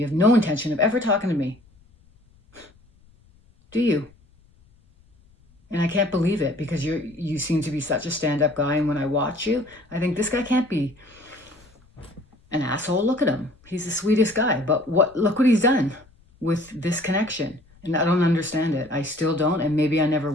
have no intention of ever talking to me. Do you? And I can't believe it, because you seem to be such a stand-up guy. And when I watch you, I think this guy can't be an asshole. Look at him. He's the sweetest guy. But look what he's done with this connection. And I don't understand it. I still don't, and maybe I never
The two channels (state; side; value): noise; left; rumble, 30 dB below the sound